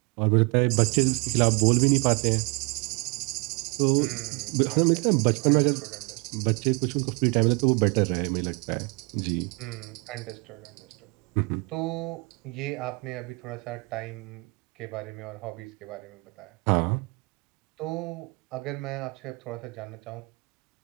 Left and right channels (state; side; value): quieter; left; 29.4 dB